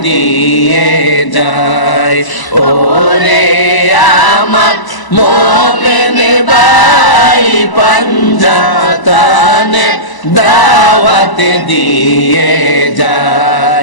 দিয়ে যায়, ওরে আমার মোমেন ভাই পাঞ্জাতনে দাওয়াত দিয়ে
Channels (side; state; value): right; late; 1.0 ms